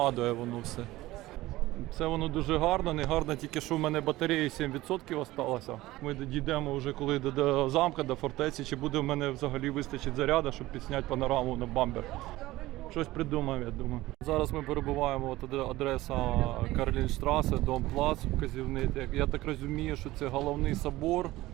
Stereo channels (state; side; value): quieter; left; 17.7 dB